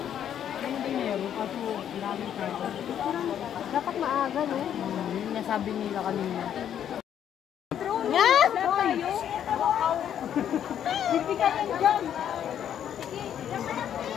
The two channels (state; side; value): quieter; right; 9.7 dB